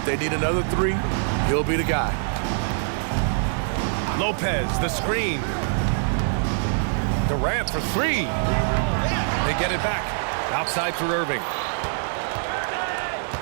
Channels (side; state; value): left; silent; digital silence